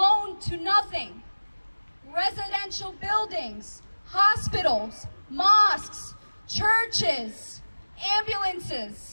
to nothing. Residential buildings, hospitals, mosques, churches,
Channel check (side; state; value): both; inverted; correlation -1.00